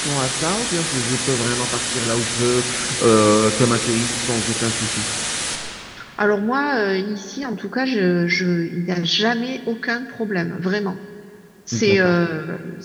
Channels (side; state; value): both; identical; correlation 1.00